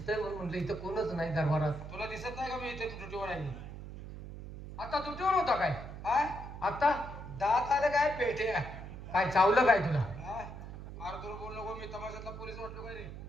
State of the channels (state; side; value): noise; right; hum, 10 dB below the sound